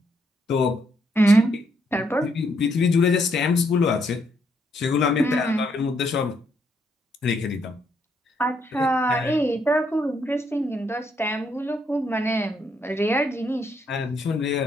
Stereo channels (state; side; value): normal; both; correlation 0.74